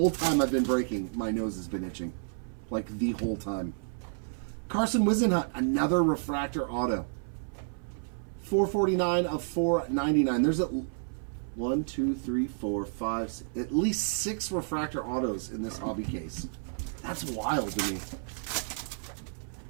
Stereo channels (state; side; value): silent; left; 57 dB below the other